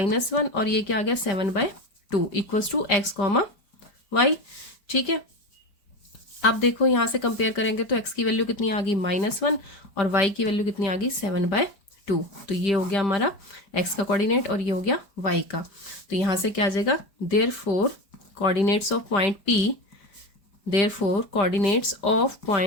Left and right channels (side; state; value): right; late; 5.1 ms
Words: और ये क्या आ गया 7/2 equals to x comma y. ठीक है, अब देखो यहां से कंपेयर करेंगे तो x की वैल्यू कितनी आ गई -1 और y की वैल्यू कितनी आ गई 7/2, तो ये हो गया हमारा x का कोऑर्डिनेट और ये हो गया y का। तो यहां से क्या आ जाएगा, therefore coordinates of point